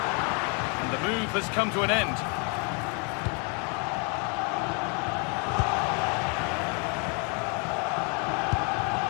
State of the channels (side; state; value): right; quieter; 35.8 dB